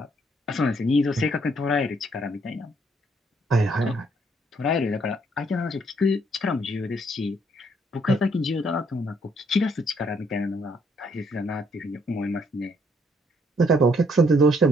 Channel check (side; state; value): both; normal; correlation 0.69